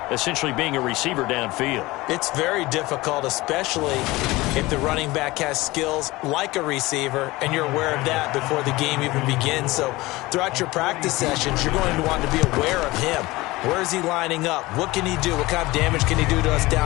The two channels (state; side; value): quieter; right; 20.4 dB